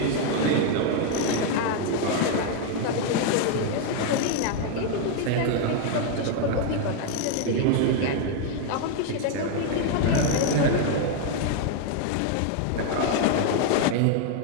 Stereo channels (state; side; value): different; both; correlation 0.01